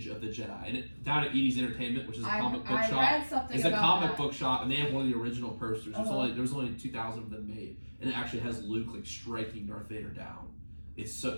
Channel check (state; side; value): inverted; both; correlation -1.00